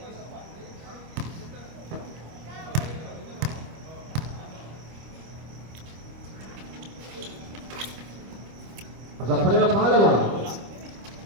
Sa pala ng pangalawa.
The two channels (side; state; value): left; late; 25 ms